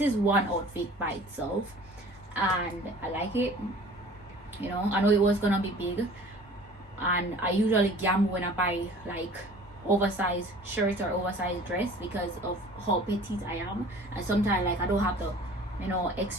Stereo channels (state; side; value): normal; both; correlation 0.46